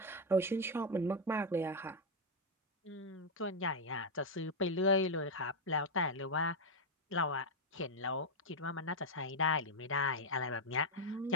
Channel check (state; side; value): normal; both; correlation 0.00